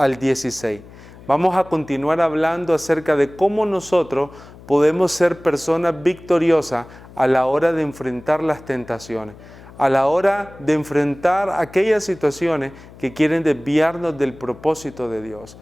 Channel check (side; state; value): left; noise; hum, 20 dB below the sound